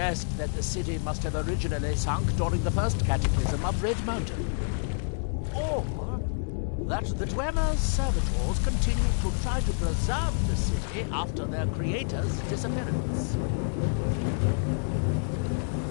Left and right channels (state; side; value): silent; right; 59 dB below the other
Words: that the city must have originally sunk during the first cataclysm of Red Mountain. Or that the Dwemer's servitors continued to try to preserve the city after their creator's disappearance.